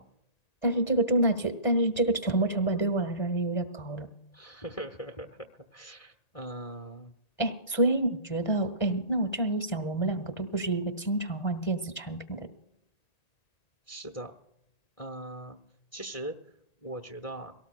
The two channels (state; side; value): late; right; 1.3 ms